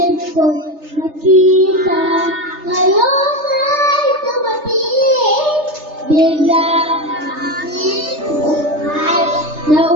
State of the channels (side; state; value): left; late; 3.3 ms